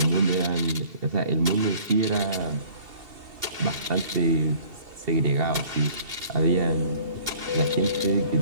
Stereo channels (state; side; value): late; left; 2.7 ms